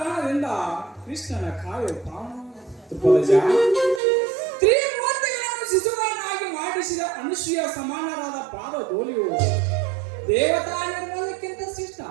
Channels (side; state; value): left; drops out; at 4.0 s